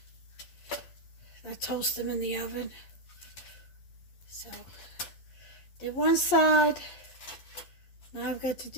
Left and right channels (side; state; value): right; late; 11 ms